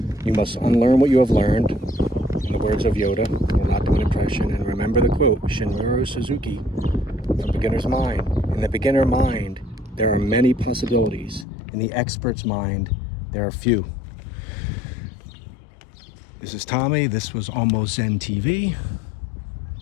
you must unlearn what you have learned. In the words of Yoda, will not do an impression. And remember the quote, Shinmuro Suzuki, from Beginner's Mind. In the beginner mind, there are many possibilities. In the expert's mind, there are few. This is Tommy. This was Almost Zen TV.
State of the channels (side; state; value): right; drops out; at 11.5 s